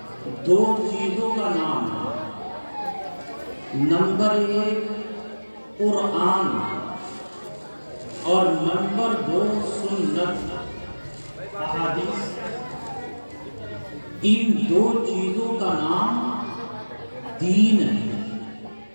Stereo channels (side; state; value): both; inverted; correlation -1.00